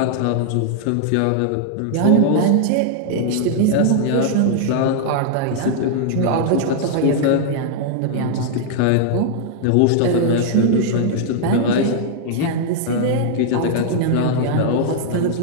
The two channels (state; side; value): different; both; correlation 0.00